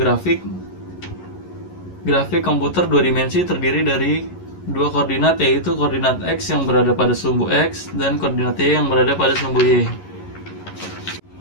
komputer dua dimensi terdiri dari dua koordinat, yaitu koordinat X yang berada pada sumbu X dan koordinat Y yang berada pada sumbu Y.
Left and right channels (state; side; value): late; right; 11 ms